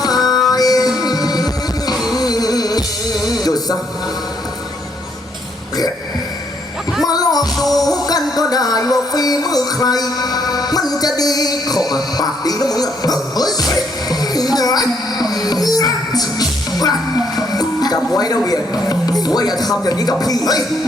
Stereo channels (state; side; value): normal; both; correlation 0.71